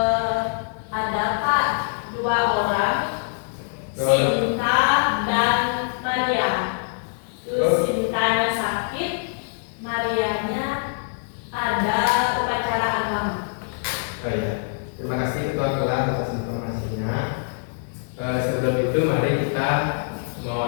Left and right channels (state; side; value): silent; right; digital silence